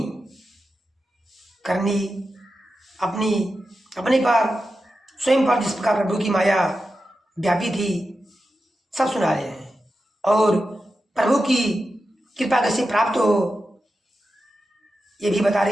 करनी, अपने पर स्वयं पर जिस प्रकार प्रभु की माया व्यापी थी सब सुना रहे हैं और प्रभु की कृपा कैसे प्राप्त हो ये भी बता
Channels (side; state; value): both; normal; correlation 0.91